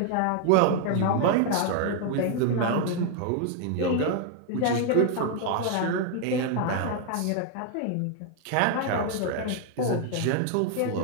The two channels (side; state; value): both; different; correlation 0.00